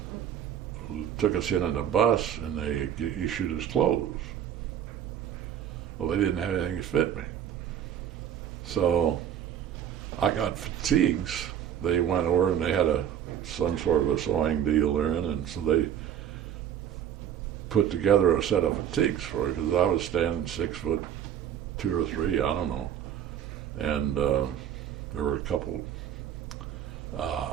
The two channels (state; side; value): quieter; left; 9.8 dB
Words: took us in a bus, and they issued us clothes. Well, they didn't have anything to fit me. So I got fatigues. They went over, and they had some sort of a sewing deal there, and so they put together a set of fatigues for me because I was standing 6'2" or 3, I don't know. And there were a couple.